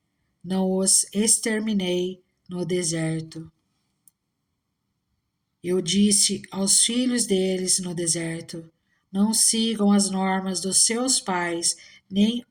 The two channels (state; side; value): identical; both; correlation 1.00